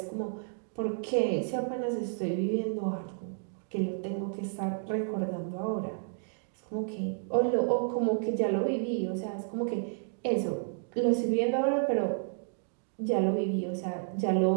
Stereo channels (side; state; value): left; silent; digital silence